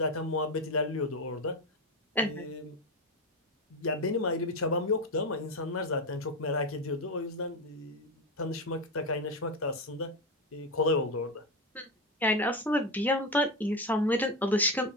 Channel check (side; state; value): both; normal; correlation 0.15